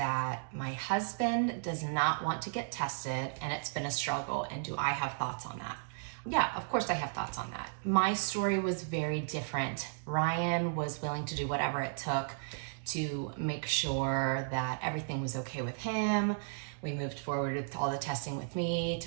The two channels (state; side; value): silent; left; digital silence